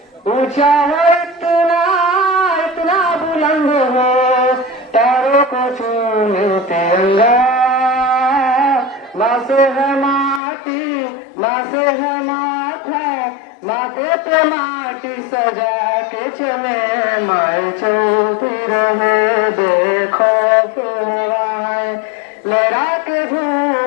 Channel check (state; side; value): drops out; right; at 10.4 s